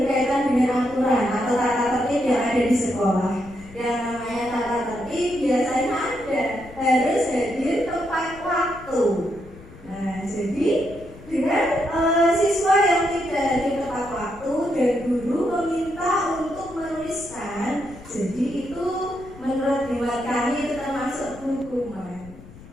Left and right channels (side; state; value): left; noise; rumble, 19 dB below the sound